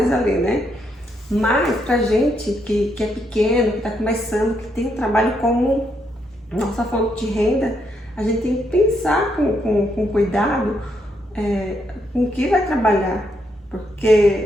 ali, né? Mas pra gente que é pequeno, que está começando, que tem o trabalho como nossa fonte de renda, a gente tem que pensar com cuidado com o que vai trabalhar,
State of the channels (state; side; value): normal; both; correlation 0.77